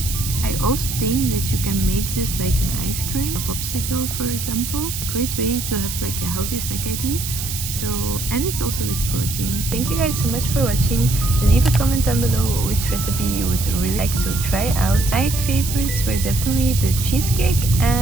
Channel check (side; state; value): right; noise; hiss, 6 dB below the sound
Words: I also think that you can make this like an ice cream, a popsicle for example. Great way to have like a healthy snack idea. So, and it's also with protein. Thank you guys so much for watching. Leave a comment down below which recipe you would really like to try out. My favorites were definitely the cheesecake